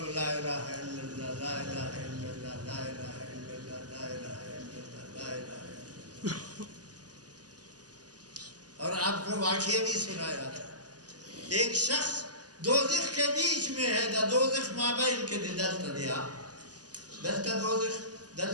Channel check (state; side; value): late; left; 0.68 ms